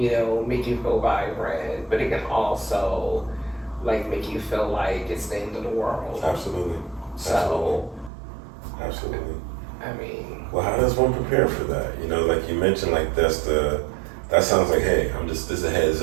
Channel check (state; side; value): drops out; left; at 8.1 s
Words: make you feel vibrant, but it can also make you feel like it's the end of the world. Absolutely. So. Absolutely. I mean. Well, how does one prepare for that? Like you mentioned, like that sounds like, hey, this is a heads